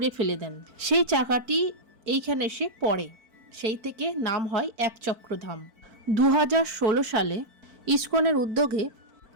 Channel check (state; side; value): late; left; 4.5 ms